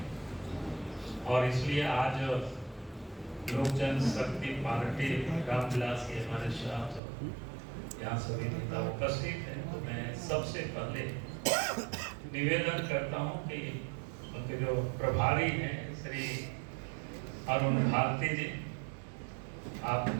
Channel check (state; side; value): drops out; left; at 7.0 s